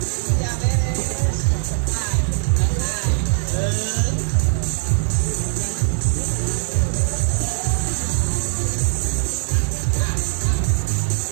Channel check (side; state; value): left; silent; 65 dB below the other